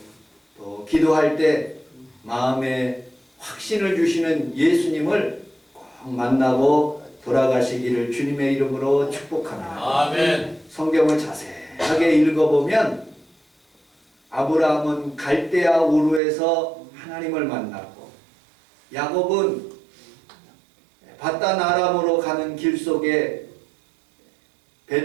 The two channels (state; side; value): drops out; left; at 16.2 s